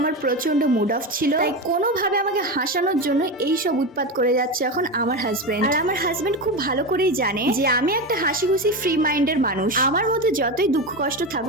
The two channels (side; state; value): both; normal; correlation 0.19